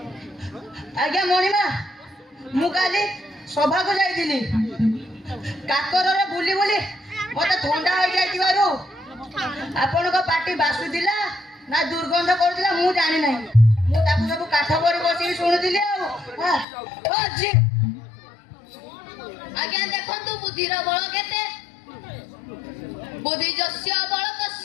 ଆଜ୍ଞା ମଣିମା, ମୁଁ କାଲି ସଭାକୁ ଯାଇଥିଲି। କାକରରେ ବୁଲି ବୁଲି ମତେ ଥଣ୍ଡା ହେଇଯାଇଥିବାରୁ ଆପଣଙ୍କ ପାଟି ବାସୁଥିଲା ନା ଦୁର୍ଗନ୍ଧ କରୁଥିଲା ମୁଁ ଜାଣି ନାହିଁ। ମୁଁ ତାକୁ ସବୁ କାଠ ପରେ ବସିକି ଶୁଣୁଥିଲି। ଆଉ ଅଛି ଆଜ୍ଞା ଦେଖନ୍ତୁ ବୁଦ୍ଧିର ବଳ କେତେ। ବୁଦ୍ଧି ଯସ୍ୟ ବଳ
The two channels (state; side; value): drops out; right; at 16.7 s